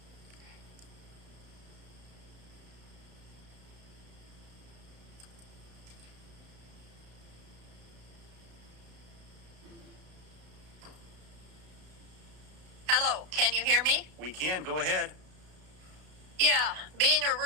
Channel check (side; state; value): left; late; 33 ms